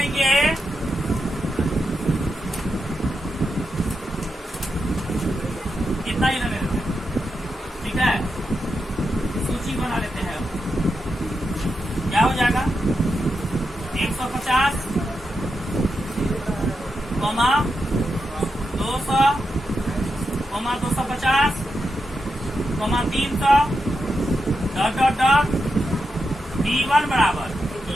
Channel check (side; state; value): both; normal; correlation 0.87